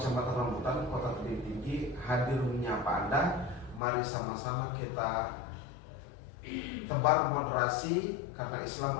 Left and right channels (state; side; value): drops out; right; at 3.8 s